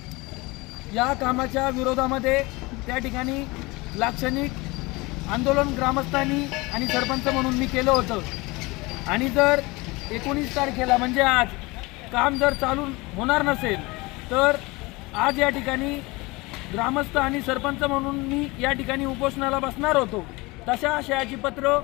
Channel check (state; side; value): quieter; right; 23.6 dB